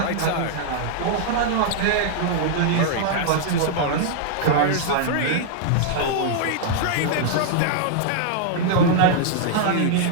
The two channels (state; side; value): different; both; correlation -0.01